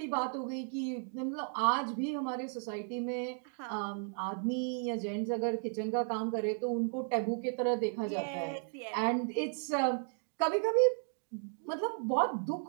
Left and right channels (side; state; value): left; silent; 55 dB below the other